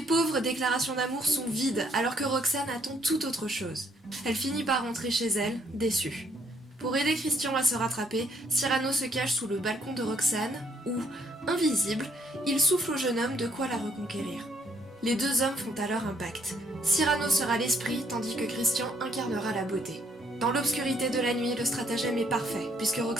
déclarations d'amour sont vides, alors que Roxane attend tout autre chose. Elle finit par rentrer chez elle, déçue. Pour aider Christian à se rattraper, Cyrano se cache sous le balcon de Roxane, où, invisible, il souffle au jeune homme de quoi la reconquérir. Les deux hommes font alors un pacte. Cyrano sera l'esprit, tandis que Christian incarnera la beauté. Dans l'obscurité de la nuit, le stratagème est parfait, puisque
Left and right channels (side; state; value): both; normal; correlation 0.68